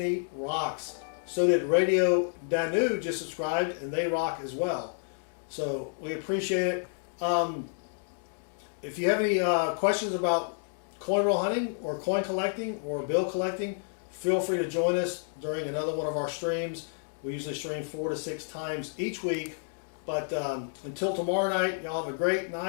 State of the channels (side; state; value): right; silent; digital silence